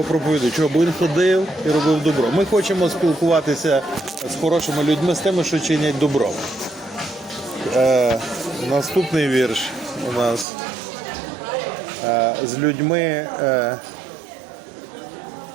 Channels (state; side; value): drops out; left; at 10.5 s